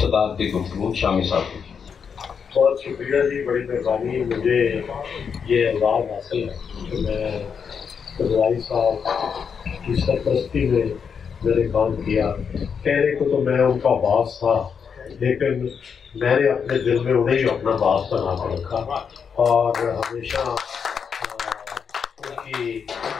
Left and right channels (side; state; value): right; quieter; 6.6 dB